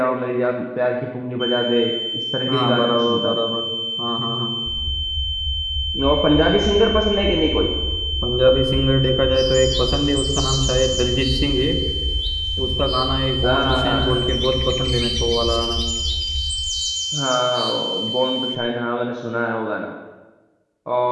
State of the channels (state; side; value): identical; both; correlation 1.00